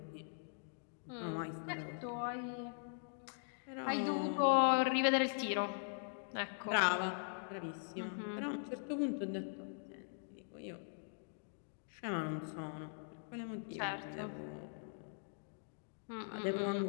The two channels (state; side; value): silent; right; digital silence